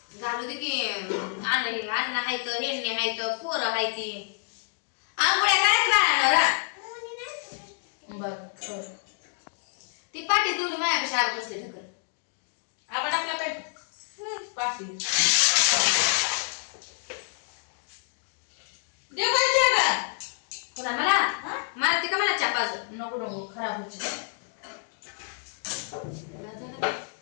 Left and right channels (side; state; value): right; silent; 59 dB below the other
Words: घालू दे की अन्न हायत हेंडणी हायत पोरं हायती आंघोळ्या करायच बाळांना बर ती पाठी तेवढी माझ्यापेक्षा आग बसले ठकर आपण आपला पेट पाठी देव पाहिजे का पुन्हा मला मारते का मला चापाज नको नको खराब होते